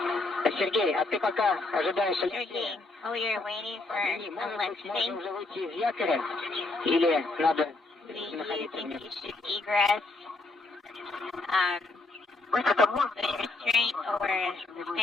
Сергей, а ты пока ожидаешь... Sergey, oh, you're waiting for a lifting? Уже выйти из якоря? Или надо Do you находиться think вместе? you should egress with restraint or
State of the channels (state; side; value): quieter; right; 3.2 dB